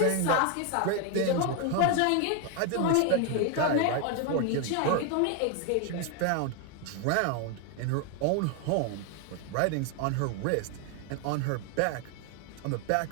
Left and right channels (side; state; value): both; different; correlation 0.01